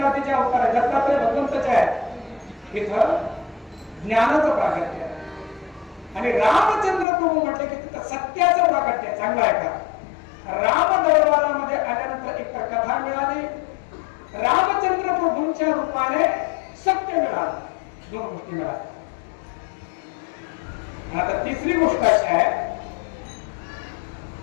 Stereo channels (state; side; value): drops out; right; at 7.1 s